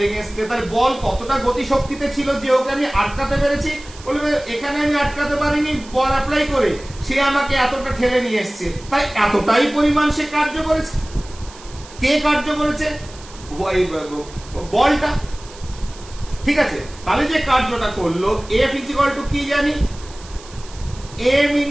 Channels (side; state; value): right; noise; hiss, 20 dB below the sound